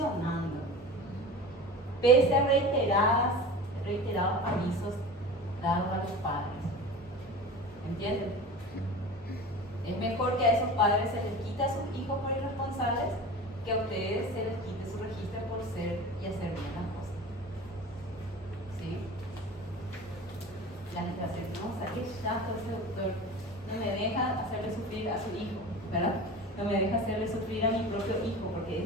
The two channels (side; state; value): both; normal; correlation 0.34